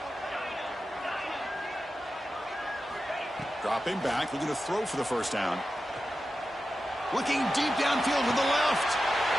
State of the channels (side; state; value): both; normal; correlation 0.92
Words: Dropping back, looking to throw for the first down. Looking deep downfield to the left.